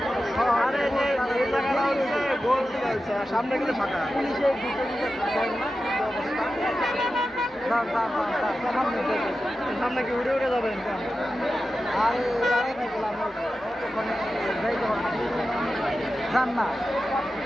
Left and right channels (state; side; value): normal; both; correlation 0.92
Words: আরে এই জায়গাটা হচ্ছে গোল দিয়ে হচ্ছে, সামনে গেলে ফাঁকা। পুলিশের সামনে কি উড়ে উড়ে যাবেন? আরে দাঁড়িয়ে থাকলাম ওখানে যাইতে পারবো যান না।